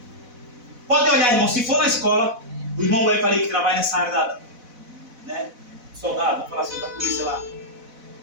Pode olhar, irmão, se for na escola, o irmão vai para ele que trabalha nessa área da, né, soldado, vamos falar assim, da polícia lá.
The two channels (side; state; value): left; late; 4.0 ms